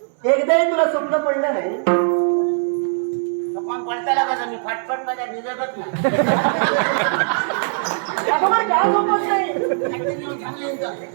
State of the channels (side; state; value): left; silent; digital silence